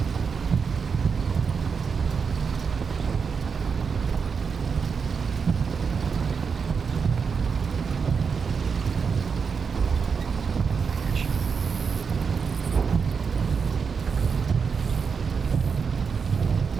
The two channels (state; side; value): quieter; left; 5.8 dB